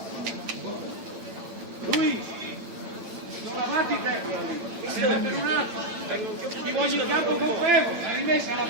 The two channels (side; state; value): left; late; 8.8 ms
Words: Lui, guardate i tecnici. Ti voglio in campo con fermo, la rimessa la